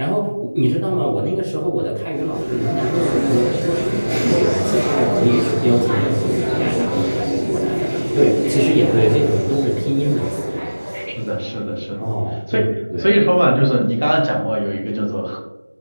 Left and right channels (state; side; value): inverted; both; correlation -1.00